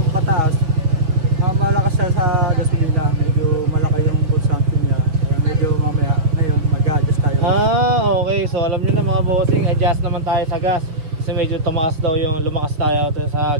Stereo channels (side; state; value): left; late; 6.3 ms